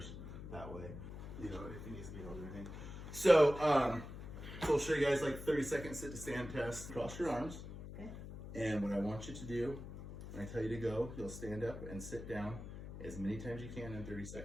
that way, you know, if it needs to be held or anything. So, so I'll show you guys like 30-second sit to stand test. Cross your arms. Okay. And what I want you to do, when I tell you to go, you'll stand up and sit down as many times you can in 30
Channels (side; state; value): left; noise; hum, 10 dB below the sound